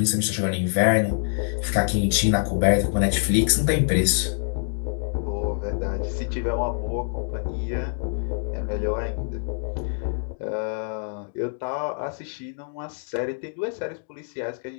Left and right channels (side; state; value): right; silent; digital silence